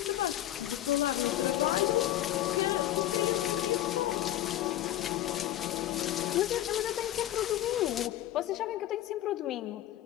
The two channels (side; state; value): right; quieter; 13.4 dB